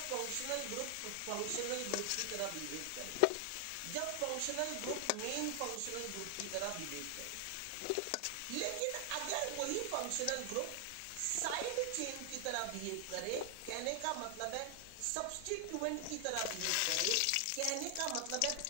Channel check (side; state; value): both; different; correlation 0.00